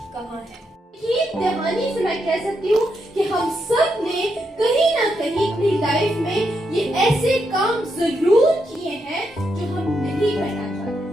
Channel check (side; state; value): both; normal; correlation 0.82